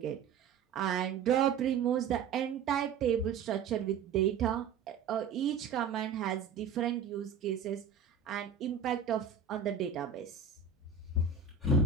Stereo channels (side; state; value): left; quieter; 6.3 dB